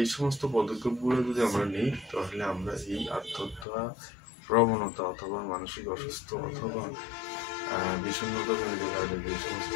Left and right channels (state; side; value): drops out; right; at 3.7 s